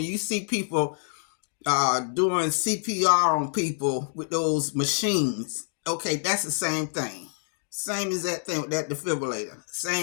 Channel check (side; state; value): right; silent; digital silence